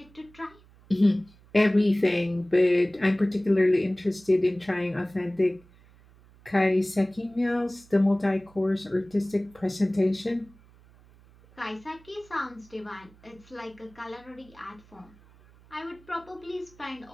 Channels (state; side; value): noise; right; hum, 26 dB below the sound